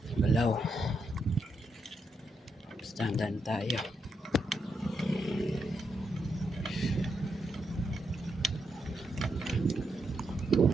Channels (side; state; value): both; normal; correlation 0.81